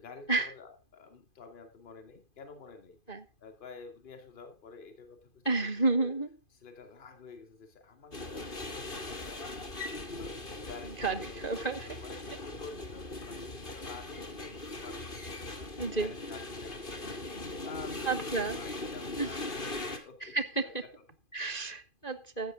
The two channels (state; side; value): late; right; 2.5 ms